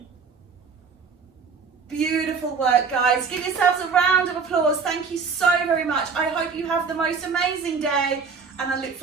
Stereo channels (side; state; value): left; quieter; 5.4 dB